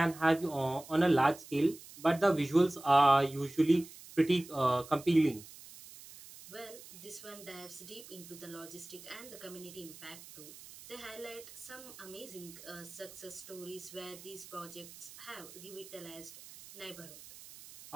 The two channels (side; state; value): right; noise; hiss, 17 dB below the sound